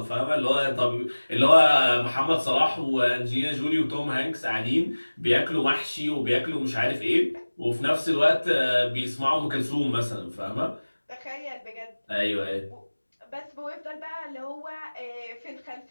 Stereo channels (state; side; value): inverted; both; correlation -1.00